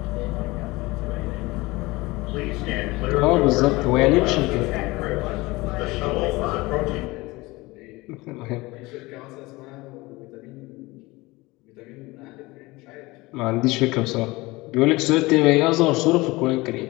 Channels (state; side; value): quieter; right; 21.8 dB